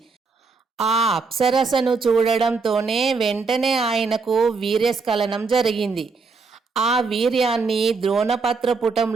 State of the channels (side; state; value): left; quieter; 4.5 dB